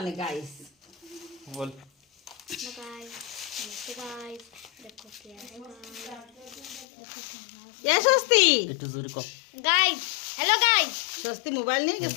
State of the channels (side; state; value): right; drops out; at 6.9 s